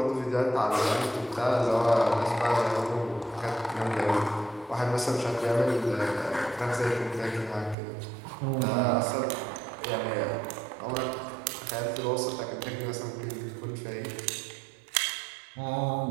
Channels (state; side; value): drops out; left; at 7.8 s